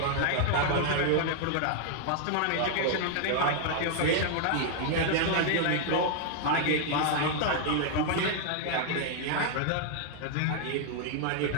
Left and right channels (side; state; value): both; different; correlation -0.01